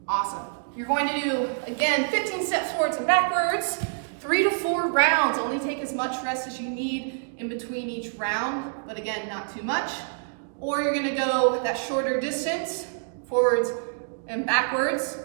Awesome. You're going to do, again, 15 steps forwards and backwards, 3 to 4 rounds. Only take as much rest as you need in between each round, but again, not too much. Or you're gonna go that shorter distance, forwards and backwards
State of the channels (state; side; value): silent; left; digital silence